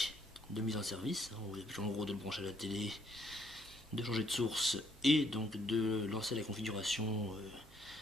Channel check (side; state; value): both; normal; correlation 0.69